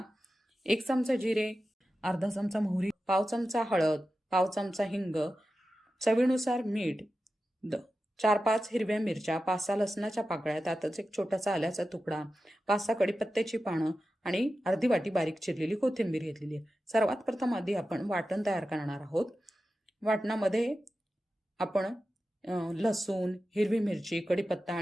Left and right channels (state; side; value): normal; both; correlation 0.93